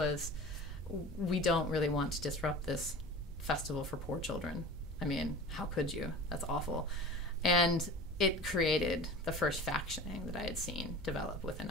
we don't really want to disrupt this festival for poor children. I mean, how could you? That's awful. And it created the first factioning that I had seen develop within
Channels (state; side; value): noise; left; hum, 24 dB below the sound